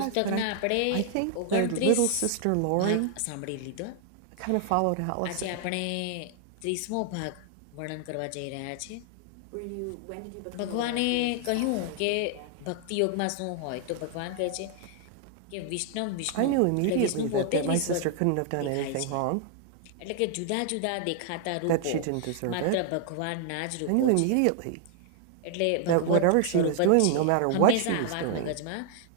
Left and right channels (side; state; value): both; different; correlation 0.00